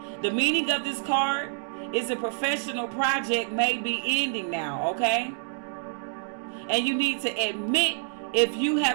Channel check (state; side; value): silent; left; digital silence